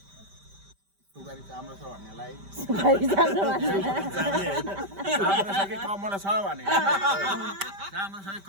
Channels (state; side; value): late; left; 5.1 ms